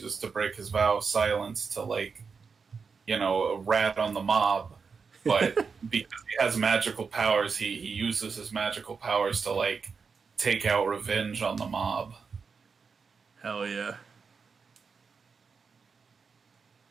to break his vow of silence to, like, you know, rat on the mob. But because he has magical powers, he uses his magical powers to, like, take out revenge on the mob. Hell yeah.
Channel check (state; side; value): quieter; left; 5.4 dB